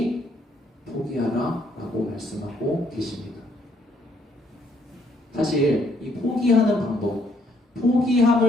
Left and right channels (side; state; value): both; normal; correlation 0.69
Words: 포기하라 라고 말씀하고 계십니다. 사실 이 포기하는 방법,